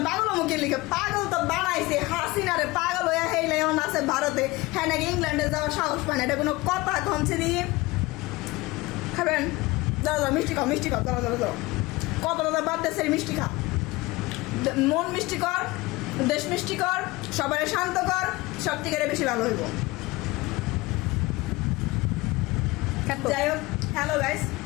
পাগল মুখের লিগা। পাগল তো বানাইছে হাসিনারে, পাগল হইয়া হেইলে এখন আছে ভারতে, হ্যাঁ নাকি ইংল্যান্ডে যাওয়ার সাহস পায় না। এটা কোনো কথা কমছে দিয়ে খাবেন? দাও দাও মিষ্টি খাও, মিষ্টি খাও, দাও দাও দাও। কত দাদা বাদ দেশের মিষ্টি খা। মন মিষ্টি কর, দেশ মিষ্টি কর, সবাই শান্ত কর, সব থেকে বেশি ভালো হইব। যাই হোক, হ্যালো গাইস,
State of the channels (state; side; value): quieter; right; 21.4 dB